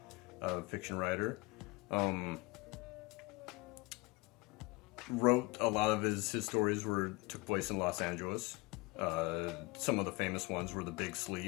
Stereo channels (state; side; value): quieter; right; 24.5 dB